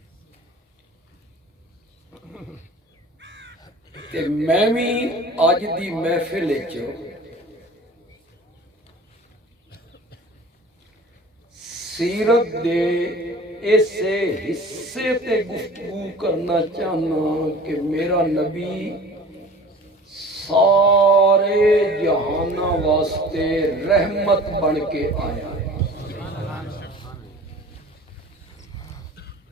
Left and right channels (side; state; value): both; normal; correlation 0.43